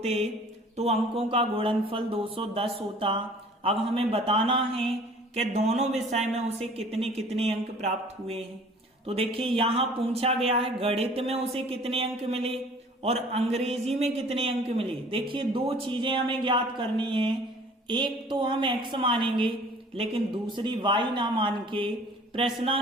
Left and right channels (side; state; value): both; normal; correlation 0.50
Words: तो अंकों का गुणनफल 210 होता। अब हमें बताना है कि दोनों विषय में उसे कितने कितने अंक प्राप्त हुए हैं। तो देखिए यहाँ पूछा गया है गणित में उसे कितने अंक मिले और अंग्रेजी में कितने अंक मिले। देखिए 2 चीजें हमें ज्ञात करनी है, एक तो हम x मानेंगे लेकिन दूसरी y ना मान के